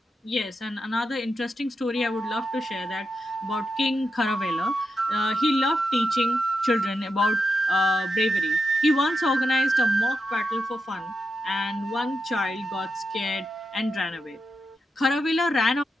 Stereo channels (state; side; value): normal; both; correlation 0.87